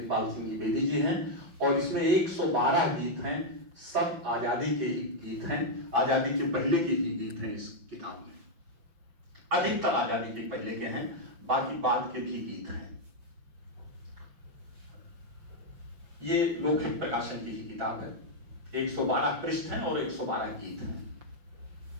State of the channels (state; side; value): late; left; 5.7 ms